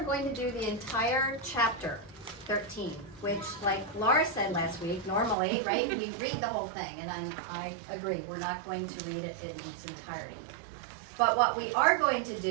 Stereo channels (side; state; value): left; drops out; at 5.4 s